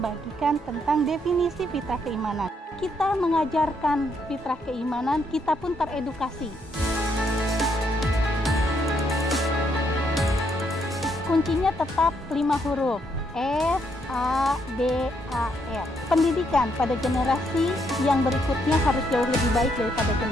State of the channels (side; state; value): both; normal; correlation 0.74